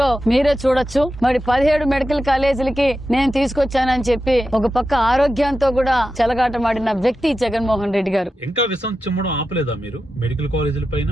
మీరే చూడొచ్చు. మరి 17 మెడికల్ కాలేజీలకి నేను తీసుకొచ్చానని చెప్పి ఒక పక్క ఆరోగ్యంతో కూడా చెలగాటమాడిన వ్యక్తి జగన్మోహన్ రెడ్డి గారు. ఇంకా విషం చిమ్మడం ఆపలేదా మీరు మెడికల్ కాలేజీల పైన?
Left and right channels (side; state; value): both; normal; correlation 0.91